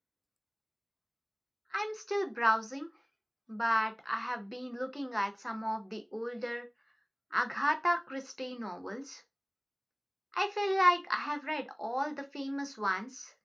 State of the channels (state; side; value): identical; both; correlation 1.00